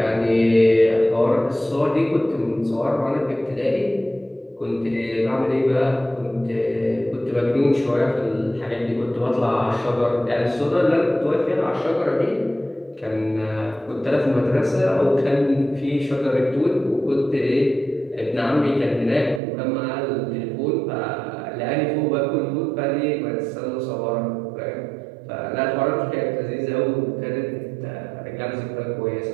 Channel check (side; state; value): left; drops out; at 19.4 s